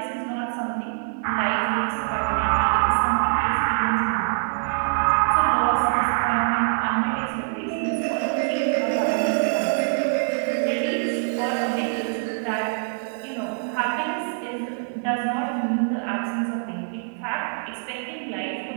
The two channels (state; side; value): silent; left; 60 dB below the other